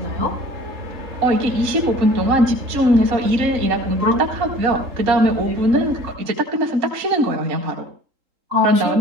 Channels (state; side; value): late; left; 3.8 ms